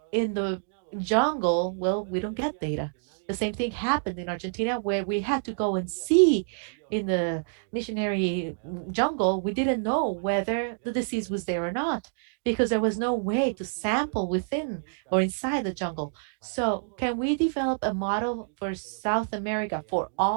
in the jungle, well, we don't get data. The same thing happened in Argentina where we had to go and see in the missionary jungle. We didn't know whether the disease was there or not because there was no way to sample within or inside the jungle. So, can we develop a model for South America, for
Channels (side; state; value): left; silent; digital silence